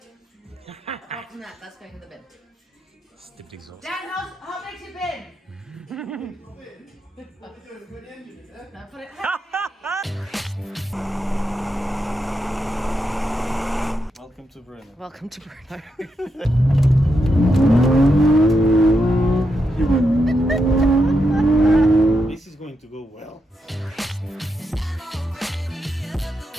Apart from that, that's going in the bin. Stipped exhaust. Dan, how big's your bin? No, put it. Welcome to Bruno. Welcome to Bruno. This is going to go well.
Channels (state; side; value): normal; both; correlation 0.83